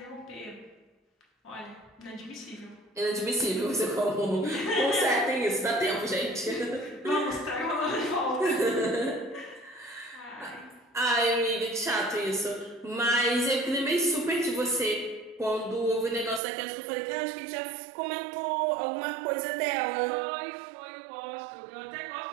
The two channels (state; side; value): drops out; left; at 16.4 s